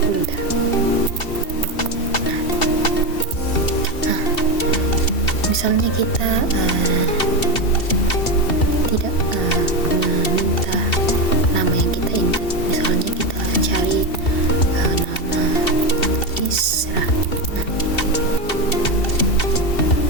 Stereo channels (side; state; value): right; late; 2.7 ms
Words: Hulda. Nah, misalnya kita tidak meminta nama yang kita input, misalnya kita cari nama Isra. Nah,